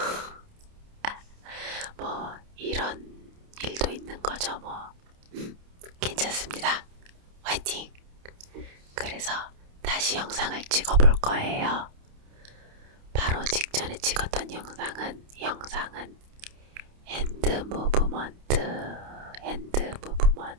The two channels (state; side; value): late; left; 29 ms